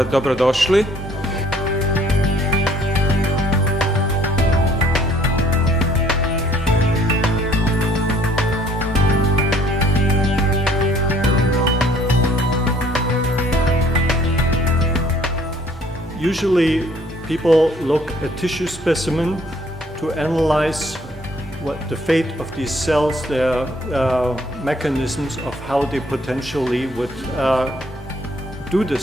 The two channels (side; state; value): both; normal; correlation 0.60